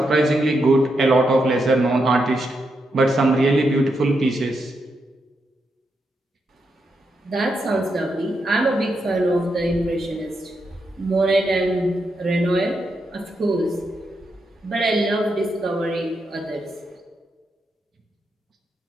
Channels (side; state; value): both; normal; correlation 0.83